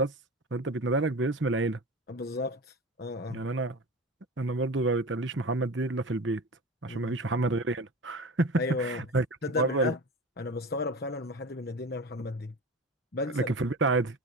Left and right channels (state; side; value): normal; both; correlation 0.31